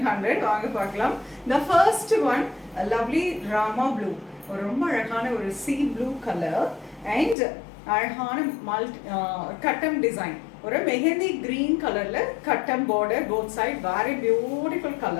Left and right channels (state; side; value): drops out; right; at 7.4 s